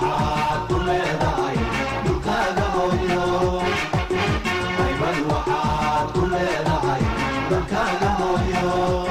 ku leedahay dhulkaaga hooyo haybad waxaad ku leedahay dalkaaga hooyo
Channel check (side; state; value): both; identical; correlation 1.00